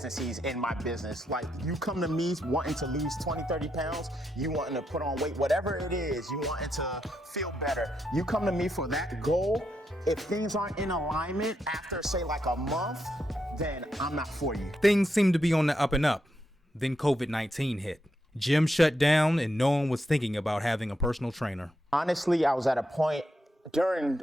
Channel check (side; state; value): both; normal; correlation 0.82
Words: in my business. Like, you come to me wanting to lose 20, 30 pounds, you wanting to put on weight, whatever it is, you wanting to feel better. You come to me for that goal. If things aren't in alignment after, say, like a month, then I'm not for you. Things seemed to be on the up and up. Then COVID-19 hit. Gym shut down and no one was thinking about having a personal trainer. Honestly, I was at a point during